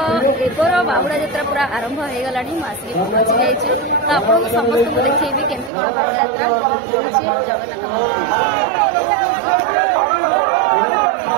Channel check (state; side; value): drops out; left; at 5.7 s